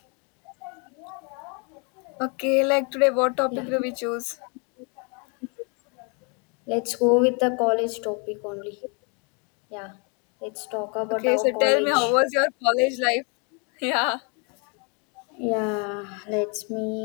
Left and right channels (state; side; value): quieter; right; 35.2 dB